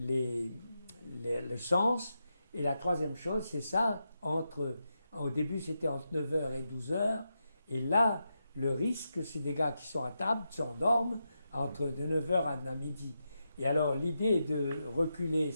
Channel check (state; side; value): inverted; both; correlation -0.87